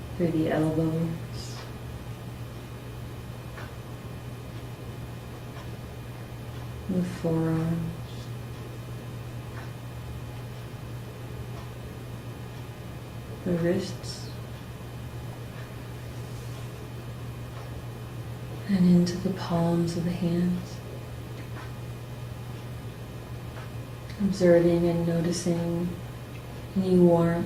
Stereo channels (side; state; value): both; identical; correlation 1.00